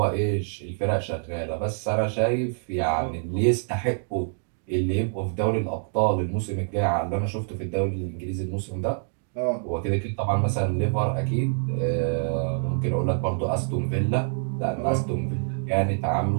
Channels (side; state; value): left; silent; digital silence